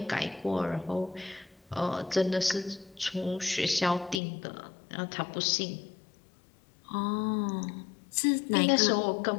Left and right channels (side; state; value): right; drops out; at 4.2 s